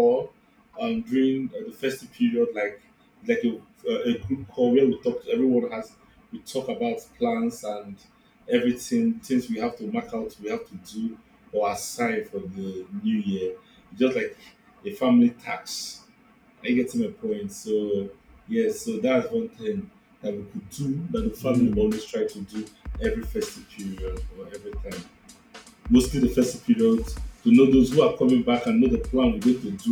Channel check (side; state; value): both; identical; correlation 1.00